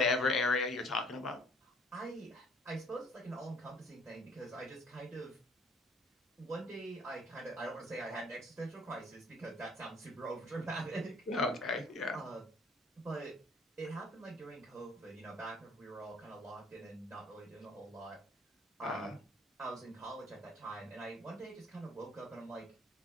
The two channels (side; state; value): both; normal; correlation 0.57